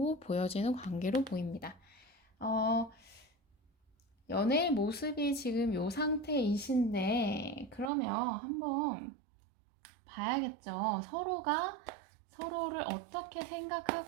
보여지는 관계로 보입니다. 어, 연애의 모습이 지금 이 상태이신데, 그러면 한번 봐야겠죠. 서로가 서로를 어떻게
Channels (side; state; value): left; drops out; at 7.9 s